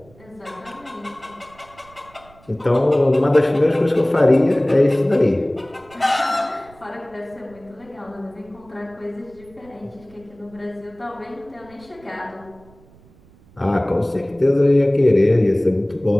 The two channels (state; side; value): noise; right; rumble, 27 dB below the sound